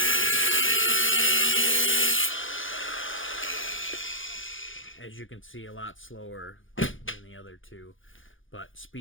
As you can see, a lot slower than the other two, but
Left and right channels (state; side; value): late; right; 0.58 ms